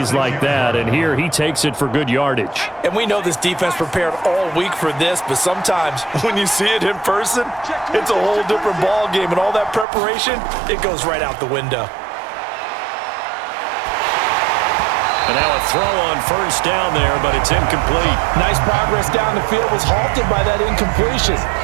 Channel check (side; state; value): left; drops out; at 9.9 s